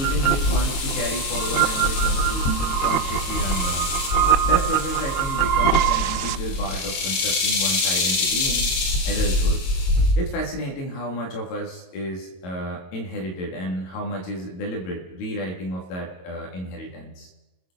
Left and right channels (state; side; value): late; right; 22 ms